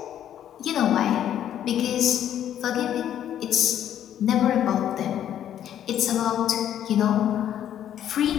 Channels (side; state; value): right; quieter; 10.6 dB